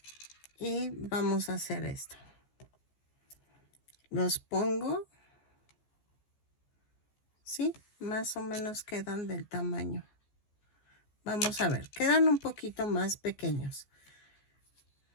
Y vamos a hacer esto. Los pongo. Sí, más o menos quedan del tamaño. Vamos a ver, quedan un poquito más pequeños.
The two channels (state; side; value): late; right; 14 ms